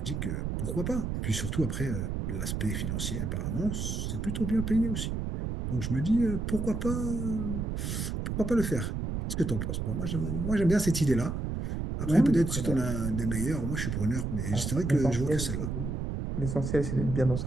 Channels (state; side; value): noise; right; rumble, 2 dB below the sound